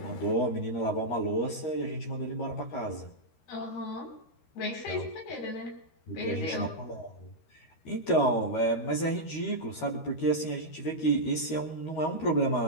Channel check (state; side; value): late; right; 13 ms